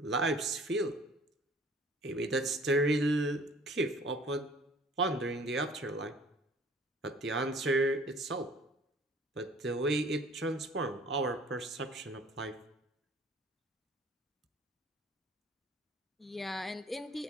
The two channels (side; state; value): both; normal; correlation 0.52